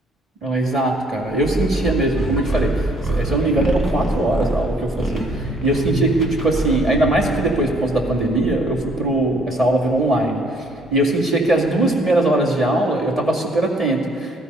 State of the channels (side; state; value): both; normal; correlation 0.63